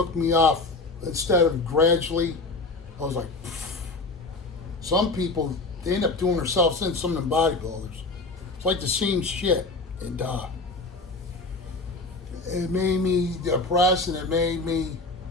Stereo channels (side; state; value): right; quieter; 3.4 dB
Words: me off instead of gradually. I was like, pfft. Some people, they end up doing themselves in, some of them bodybuilders. It's like the same shit. And it made me depressed, and it made me,